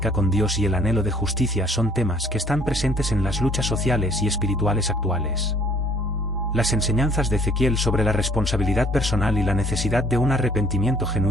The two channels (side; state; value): both; normal; correlation 0.58